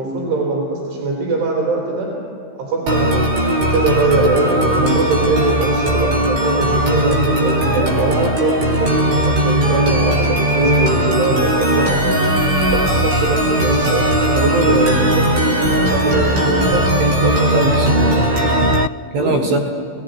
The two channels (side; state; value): left; late; 15 ms